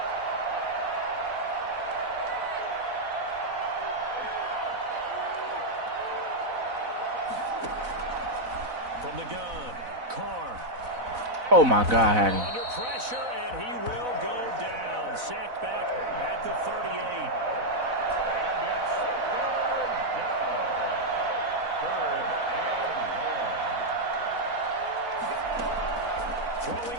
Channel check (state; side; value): late; left; 4.0 ms